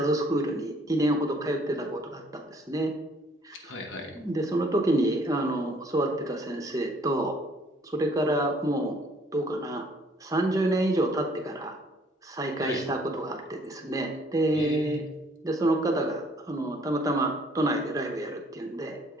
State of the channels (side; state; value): both; normal; correlation 0.61